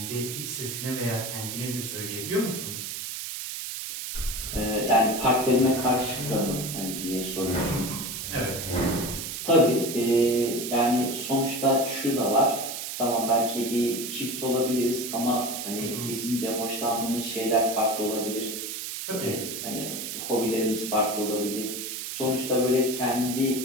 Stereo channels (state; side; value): noise; right; hiss, 6 dB below the sound